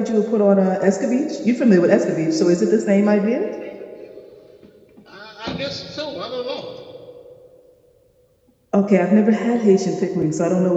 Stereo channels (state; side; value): identical; both; correlation 1.00